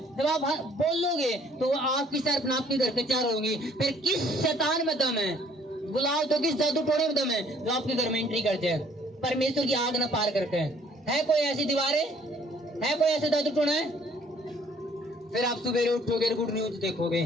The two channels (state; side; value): normal; both; correlation 0.60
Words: जब आप बोलोगे तो आग की शहरपनाह आपके घर के चारों होंगी। फिर किस शैतान में दम है, बुलाओ तो किस जादू टोने में दम है जो आपके घर में एंट्री करते हैं, परमेश्वर की आग ना पार करते हैं? है कोई ऐसी दीवारें? है कोई ऐसे जादू टोना है? फिर आप सुबह उठोगे, गुड न्यूज देखोगे